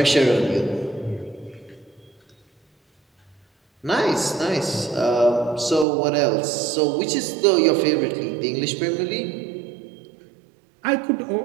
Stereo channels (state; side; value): drops out; left; at 5.9 s